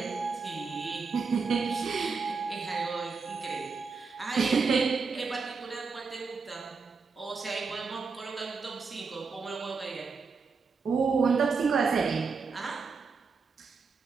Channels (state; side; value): quieter; left; 4.9 dB